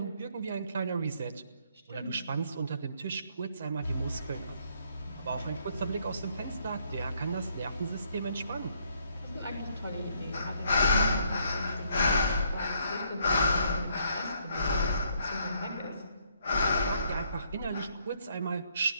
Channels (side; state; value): both; inverted; correlation -0.70